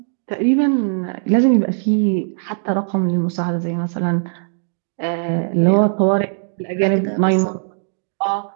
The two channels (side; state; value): left; silent; digital silence